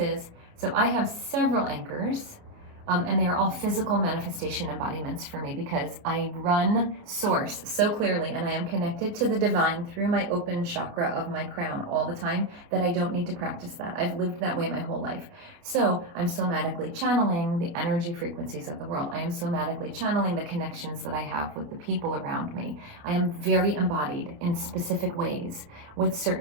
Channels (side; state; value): left; late; 29 ms